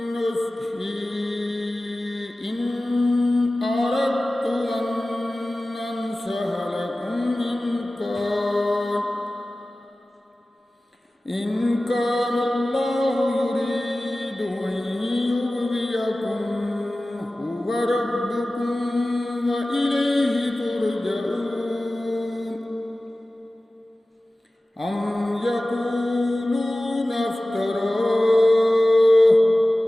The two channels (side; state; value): both; normal; correlation 0.97